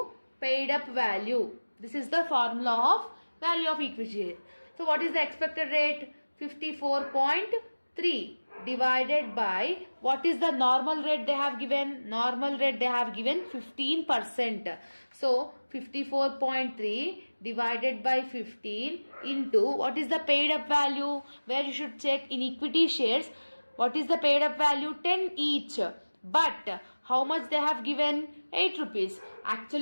paid up value. This is the formula of value of equity. So what is the expected rate? 54.3 divided by, what is the normal rate they have given? Normal rate they have given 15%. So 54.3 divided by 15 into, what is the paid up value? Where you should check in equity shares. What is the paid up value? 10 each. But how much they have given? 8 rupees.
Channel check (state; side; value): inverted; both; correlation -1.00